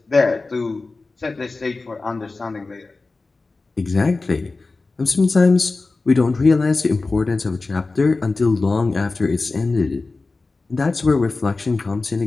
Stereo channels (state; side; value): quieter; right; 3.6 dB